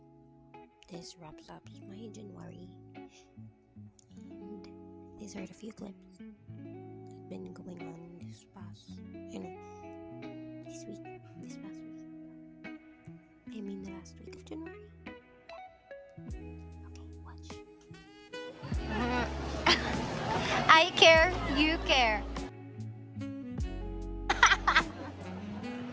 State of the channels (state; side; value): identical; both; correlation 1.00